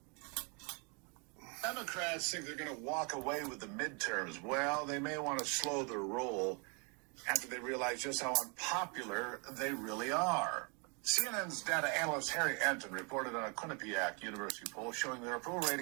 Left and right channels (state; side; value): quieter; left; 34.2 dB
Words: Democrats think they're going to walk away with the midterms. Well, they may want to slow their roll after they realize just how unpopular they really are. CNN's data analyst Harry Anton reported on a Quinnipiac University poll showing their approval